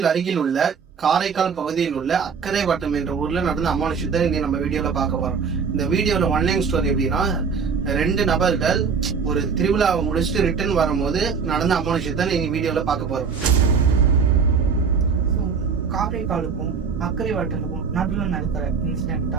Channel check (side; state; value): left; quieter; 5.8 dB